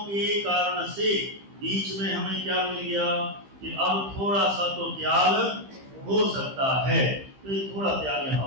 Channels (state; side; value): late; left; 15 ms